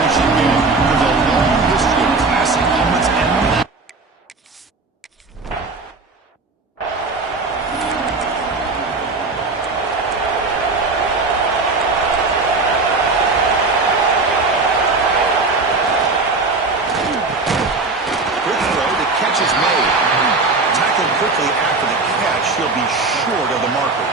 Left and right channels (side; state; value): left; quieter; 3.8 dB